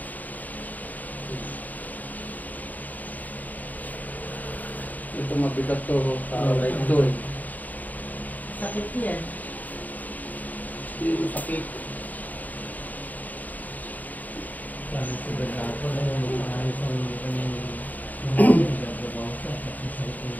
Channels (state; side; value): late; right; 0.080 ms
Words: Ito mabigat to. Like ito. Sakit yan. Hindi mo sakit. Sabi ko ba na ako na yung maayos ang